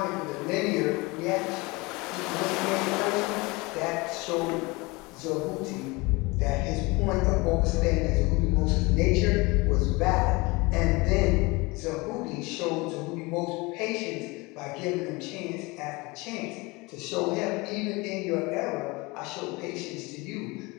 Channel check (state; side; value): quieter; right; 24.6 dB